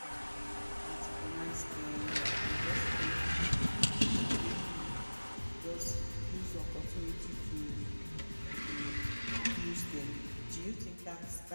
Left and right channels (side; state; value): both; inverted; correlation -1.00